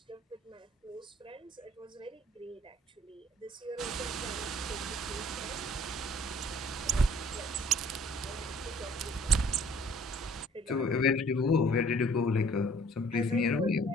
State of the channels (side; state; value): both; normal; correlation 0.56